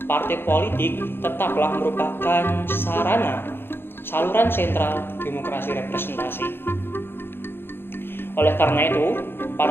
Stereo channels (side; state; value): right; late; 0.11 ms